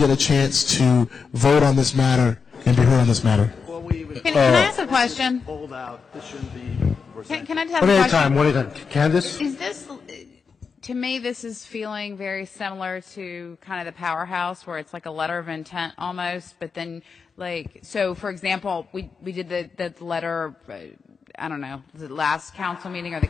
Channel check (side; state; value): right; quieter; 5.5 dB